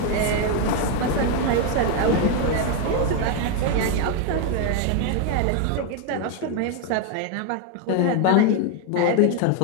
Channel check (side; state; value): both; different; correlation 0.01